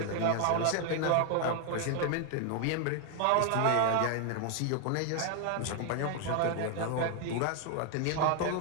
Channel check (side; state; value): both; different; correlation 0.00